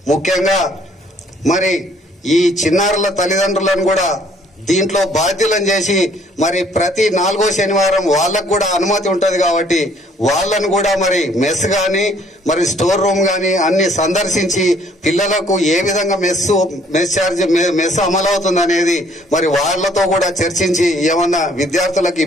ముఖ్యంగా మరి ఈ చిన్నారుల తల్లిదండ్రులను కూడా దీంట్లో బాధ్యులను చేసి మరి ప్రతి 4వ శనివారం వాళ్ళకు కూడా అనుమతి ఉంటది కాబట్టి వాళ్ళను కూడా మరి మెస్ గాని మరి స్టోర్ రూమ్ గాని అన్ని సందర్శించి పిల్లలకు ఏ విధంగా మెస్ అమలవుతుంది అనేది మరి వాళ్లతో కూడా చర్చించి ఏమన్నా విద్యార్థులకు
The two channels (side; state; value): both; normal; correlation 0.61